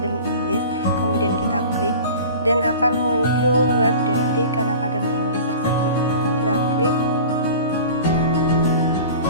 English, kemudian kita klik dan akan muncul web dari Khan Academy English tersebut. Kita klik.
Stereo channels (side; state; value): both; inverted; correlation -0.39